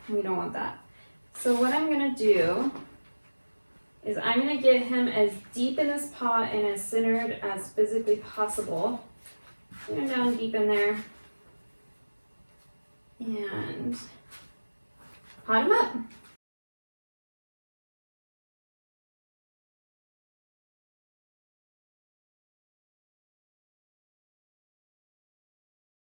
we don't want that. So what I'm gonna do is I'm gonna get him as deep in this pot and as centered as physically possible. Put him down deep in there and pot him up.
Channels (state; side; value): inverted; both; correlation -1.00